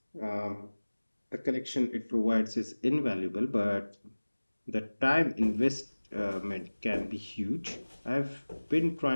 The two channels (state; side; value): inverted; both; correlation -1.00